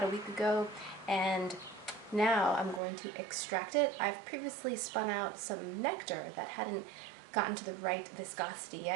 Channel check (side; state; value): left; drops out; at 2.8 s